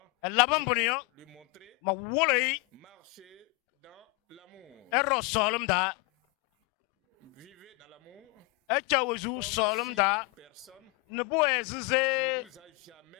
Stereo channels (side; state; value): right; quieter; 26.3 dB